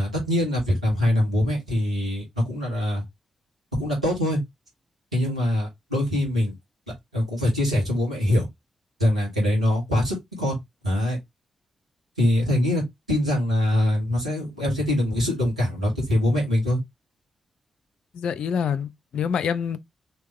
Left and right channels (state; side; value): normal; both; correlation 0.79